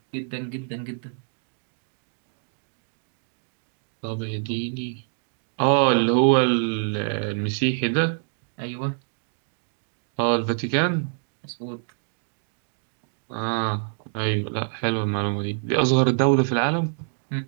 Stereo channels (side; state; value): left; silent; 61 dB below the other